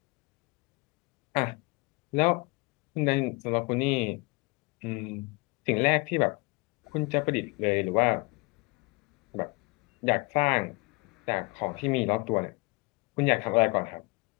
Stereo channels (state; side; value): quieter; right; 27.7 dB